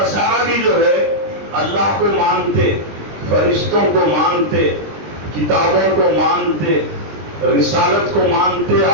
بھی جو ہے اللہ کو مانتے, فرشتوں کو مانتے, کتابوں کو مانتے, رسالت کو مانتے,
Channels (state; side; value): late; left; 20 ms